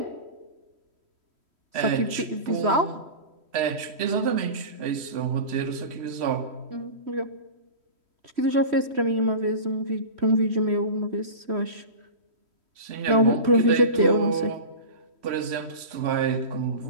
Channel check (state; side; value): late; left; 3.1 ms